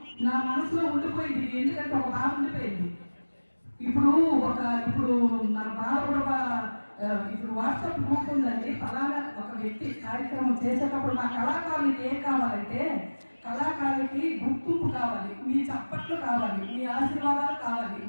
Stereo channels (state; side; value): inverted; both; correlation -1.00